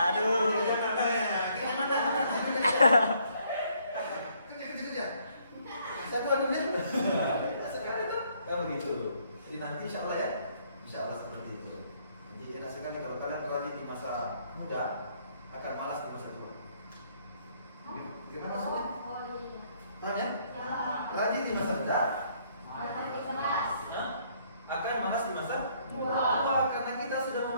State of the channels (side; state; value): both; inverted; correlation -0.67